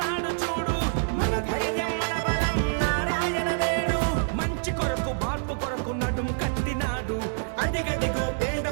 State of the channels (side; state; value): left; silent; 60 dB below the other